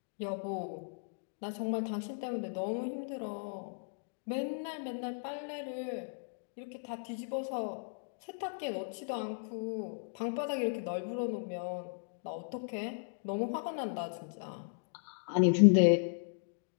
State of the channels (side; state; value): right; silent; digital silence